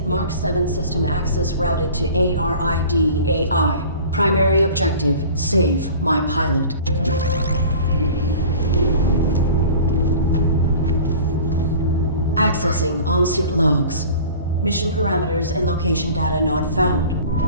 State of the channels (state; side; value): inverted; both; correlation -0.42